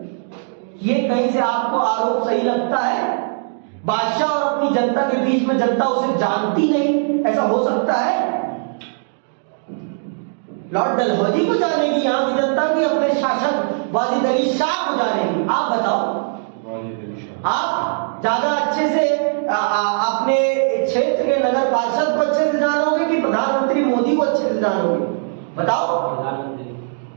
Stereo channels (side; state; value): left; silent; 63 dB below the other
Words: ये कहीं से आपको आरोप सही लगता है? बादशाह और अपनी जनता के बीच में जनता उसे जानती नहीं, ऐसा हो सकता है? लॉर्ड डलहौजी को जानेगी यहां की जनता की अपने शासक वाजिद अली शाह को जानेगी? आप बताओ। आप ज्यादा अच्छे से अपने क्षेत्र के नगर पार्षद को अच्छे से जानोगे कि प्रधानमंत्री मोदी को अच्छे से जानोगे? बताओ।